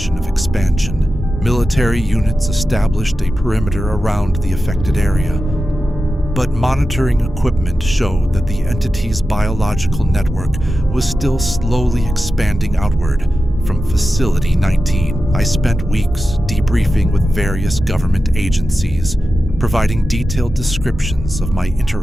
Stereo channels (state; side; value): normal; both; correlation 0.92